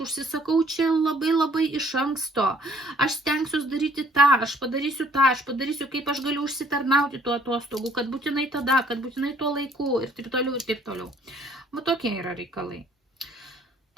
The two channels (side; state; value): both; normal; correlation 0.60